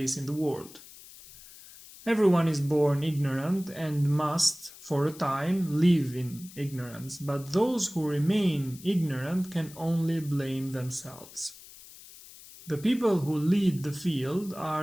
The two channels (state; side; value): noise; left; hiss, 19 dB below the sound